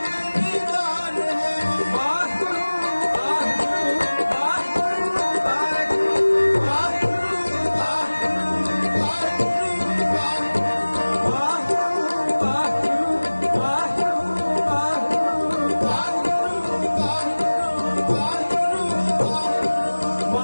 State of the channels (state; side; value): inverted; both; correlation -1.00